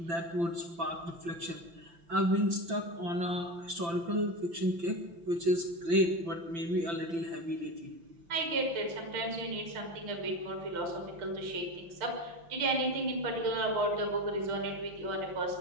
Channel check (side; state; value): left; late; 5.9 ms